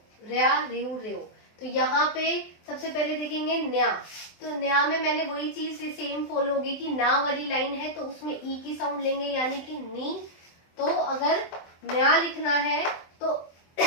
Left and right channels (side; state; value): right; late; 23 ms